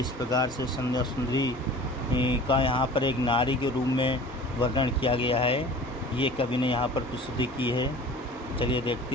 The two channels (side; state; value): both; normal; correlation 0.42